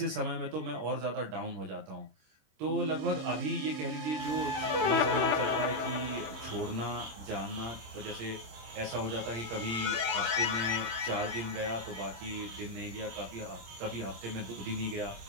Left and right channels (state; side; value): late; left; 26 ms